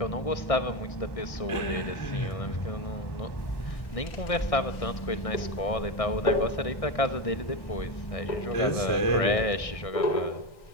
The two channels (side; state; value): right; late; 1.6 ms